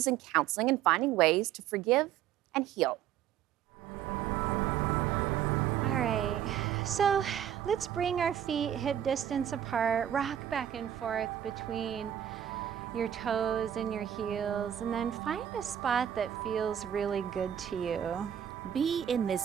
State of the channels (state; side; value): quieter; left; 10.2 dB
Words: in counseling and finding ways to forgive and heal. All right, so let's bring our feet hip distance apart, rock back and forth between your toes and your heels, and then find a spot that feels really good to you. Be in